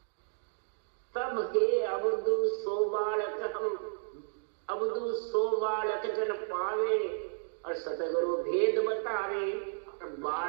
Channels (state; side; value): silent; left; digital silence